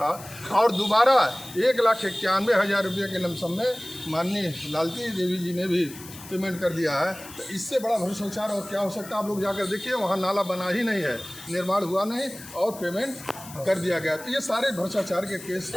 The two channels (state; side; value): noise; left; hiss, 16 dB below the sound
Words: और दोबारा 1,91,000 रुपये के लमसम में माननीय लालती देवी जी ने भी पेमेंट कर दिया है। तो इससे बड़ा भ्रष्टाचार और क्या हो सकता है? आप लोग जाकर देखिए, वहाँ नाला बना ही नहीं है, निर्माण हुआ नहीं, और पेमेंट कर दिया गया। तो ये सारे भ्रष्टाचार के केस